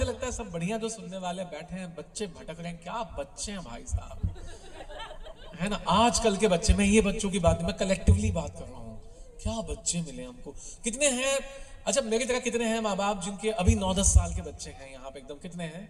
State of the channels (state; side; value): identical; both; correlation 1.00